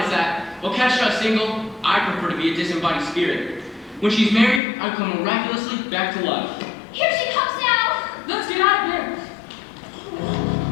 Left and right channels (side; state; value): right; drops out; at 4.6 s